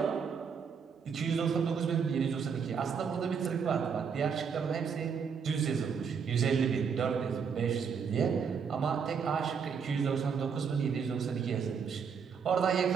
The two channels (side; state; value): left; quieter; 6.4 dB